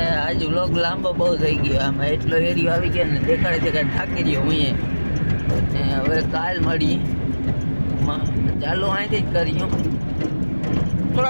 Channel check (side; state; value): both; inverted; correlation -1.00